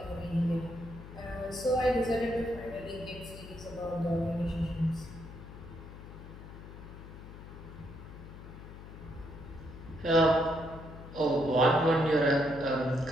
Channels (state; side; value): noise; left; hum, 14 dB below the sound